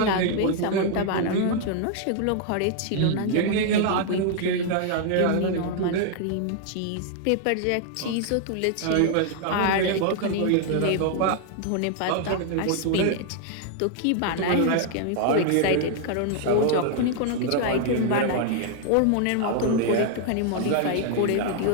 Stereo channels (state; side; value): different; both; correlation 0.00